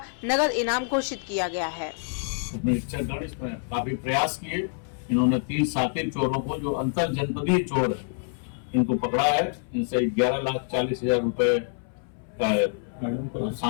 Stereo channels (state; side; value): silent; right; 60 dB below the other